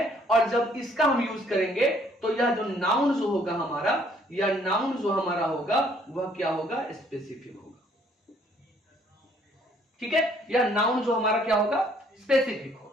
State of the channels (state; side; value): normal; both; correlation 0.63